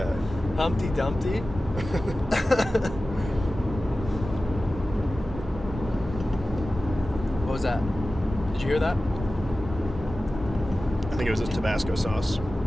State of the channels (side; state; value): both; normal; correlation 0.95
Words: Humpty Dumpty. What was that? Did you hear that? I think it was this Tabasco sauce.